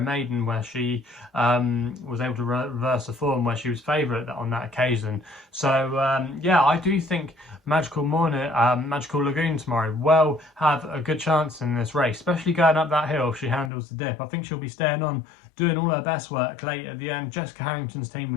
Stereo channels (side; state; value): right; drops out; at 13.7 s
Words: maiden, where she was able to reverse the form where she was favourite on that occasion. So yeah, I do think Magical Lagoon tomorrow will have a good chance in this race, especially going up that hill if she handles the dip. I think she'll be staying on, doing all her best work late at the end. Jessica Harrington's team,